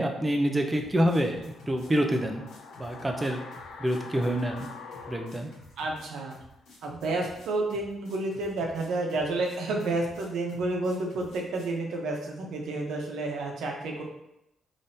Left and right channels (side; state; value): both; normal; correlation 0.79